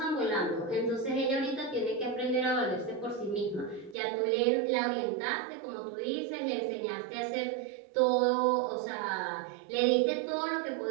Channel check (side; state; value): left; drops out; at 4.0 s